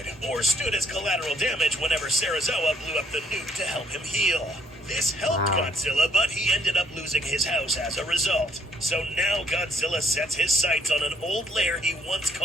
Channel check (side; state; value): both; normal; correlation 0.66